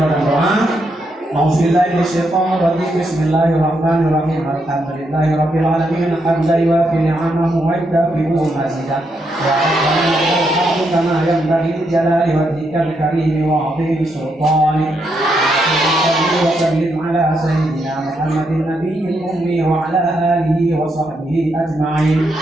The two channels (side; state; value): both; normal; correlation 0.79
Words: doa A'udzubillahi minasyaitonir rajim. Bismillahirrahmanirrahim. Alhamdulillahi rabbil alamin. Hamdan yuwafi ni'amahu wa yukafi'u mazidah. Ya Rabbana lakal kama yanbaghi li jalali wajhikal karim wa 'azimi sultanik. وسلم على سيدنا محمد النبي الأمي وعلى آله وصحبه أجمعين.